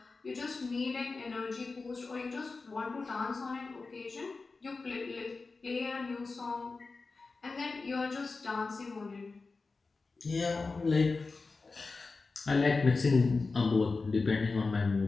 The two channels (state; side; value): quieter; right; 4.0 dB